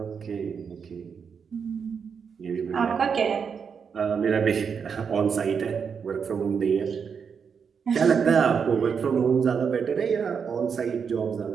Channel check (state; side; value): quieter; left; 6.4 dB